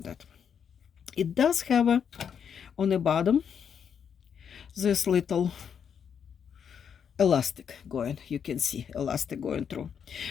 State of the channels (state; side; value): quieter; right; 7.6 dB